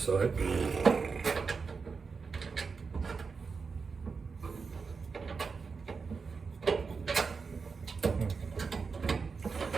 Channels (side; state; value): left; quieter; 5.0 dB